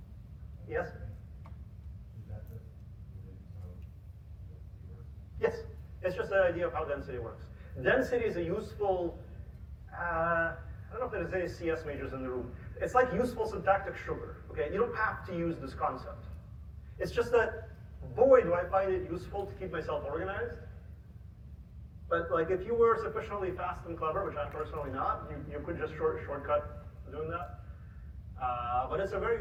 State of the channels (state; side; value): identical; both; correlation 1.00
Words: Yes? Is that just related to how density works? Yes, it's just the idea of how density works. Density is a useful, I don't know if there's any CS majors in the room. It's like useful syntactic sugar, okay? You don't have to use this concept. It's just that, boy, do I find it useful to keep myself organized. But like, if you were sufficiently fast and clever, which I'm personally not, you could just shortcut doing that. But it's a very